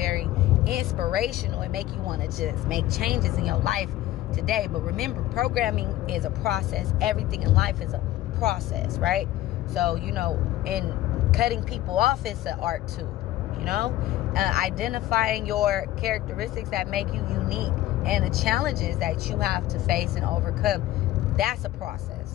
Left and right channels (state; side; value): quieter; right; 14.9 dB